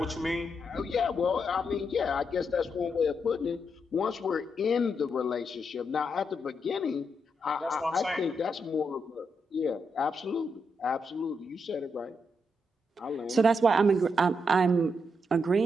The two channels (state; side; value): normal; both; correlation 0.81